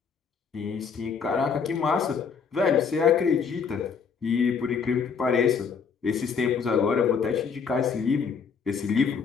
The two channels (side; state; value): right; quieter; 6.1 dB